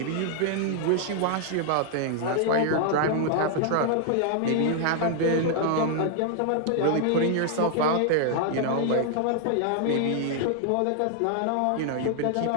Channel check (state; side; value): different; both; correlation 0.00